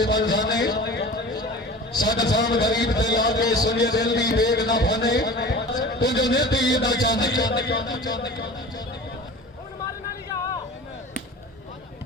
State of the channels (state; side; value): normal; both; correlation 0.38